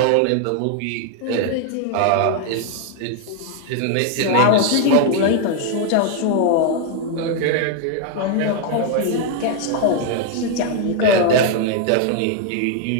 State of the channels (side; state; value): both; different; correlation 0.00